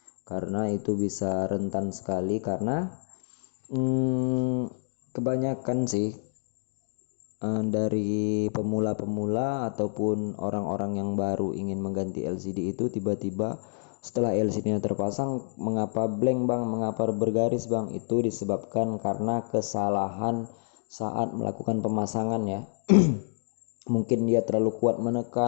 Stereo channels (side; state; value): right; silent; digital silence